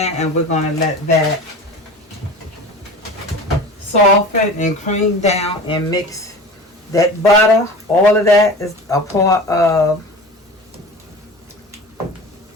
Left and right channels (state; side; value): normal; both; correlation 0.35